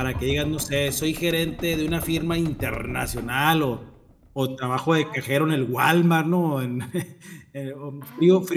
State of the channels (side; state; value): both; identical; correlation 1.00